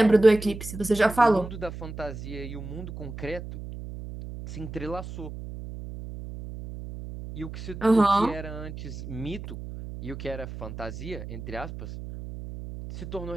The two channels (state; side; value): noise; right; hum, 10 dB below the sound